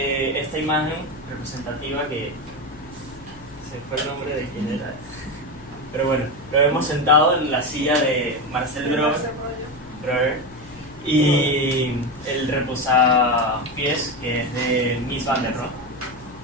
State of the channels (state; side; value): noise; left; hum, 21 dB below the sound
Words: imagen representativa que se fue el nombre de quién era, pero bueno, lo vemos sentado en la silla de Marcel Breuer, y el reposapiés, que es de Mies van der Rohe.